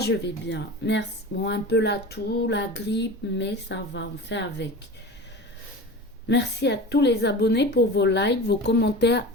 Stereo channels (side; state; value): both; normal; correlation 0.33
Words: vais bien, merci. Bon, un peu la toux, la grippe, mais ça va, on fait avec. Merci à tous les abonnés pour vos likes, vos commentaires